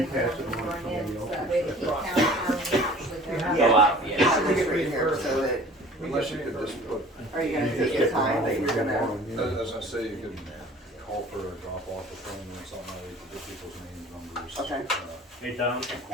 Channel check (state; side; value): normal; both; correlation 0.47